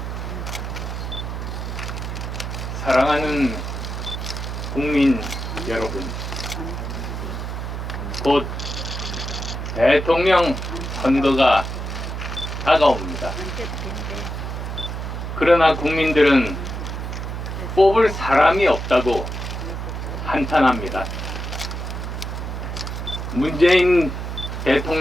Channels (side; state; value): right; noise; hum, 5 dB below the sound